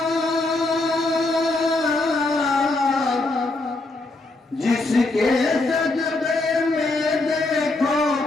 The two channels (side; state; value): right; quieter; 3.0 dB